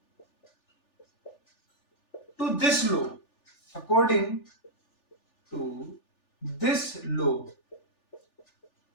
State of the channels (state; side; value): late; right; 3.4 ms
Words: to this law, according to this law,